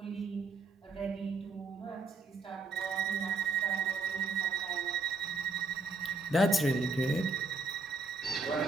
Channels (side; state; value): left; quieter; 3.6 dB